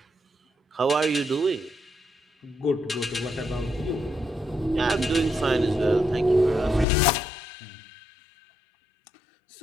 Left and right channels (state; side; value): drops out; right; at 6.9 s